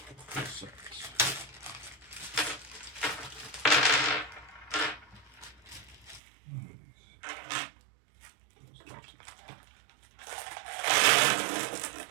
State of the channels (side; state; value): left; drops out; at 6.2 s